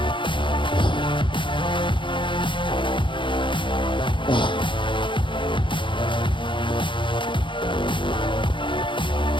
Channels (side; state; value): right; late; 0.24 ms